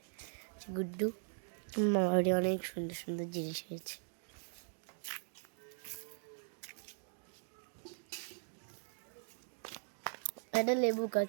গুড্ডু মামারি অনেক সুন্দর সুন্দর জিনিস হয়েছে। এটা লেবু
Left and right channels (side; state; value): left; silent; digital silence